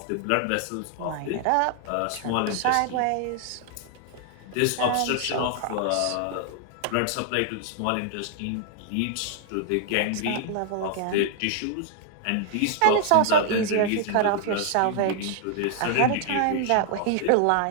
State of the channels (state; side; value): different; both; correlation 0.00